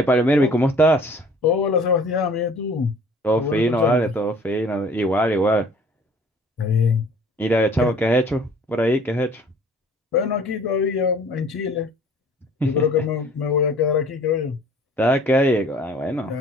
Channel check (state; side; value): normal; both; correlation 0.52